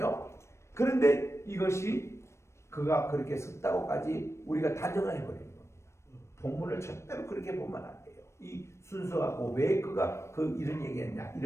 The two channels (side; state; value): right; late; 0.13 ms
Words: 그런데 이것이 그가 그렇게 썼다고까지 우리가 단정을 해버리는 겁니다. 본문을 절대로 그렇게 보면 안 돼요. 이 순서하고 왜 그가 이런 얘기했냐